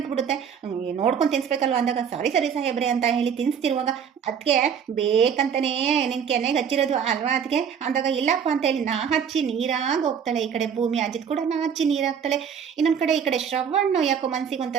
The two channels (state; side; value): quieter; left; 7.5 dB